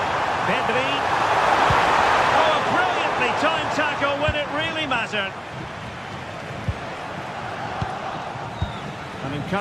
Pedri. Oh, a brilliantly timed tackle when it really mattered. An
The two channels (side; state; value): both; identical; correlation 1.00